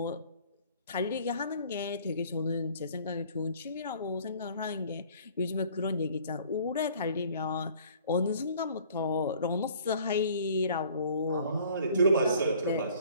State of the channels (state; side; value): inverted; both; correlation -0.54